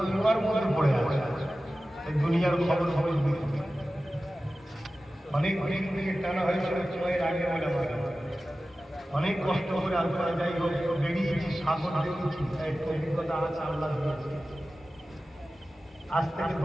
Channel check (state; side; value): normal; both; correlation 0.95